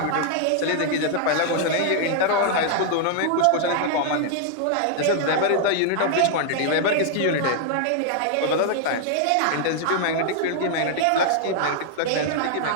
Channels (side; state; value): both; different; correlation 0.00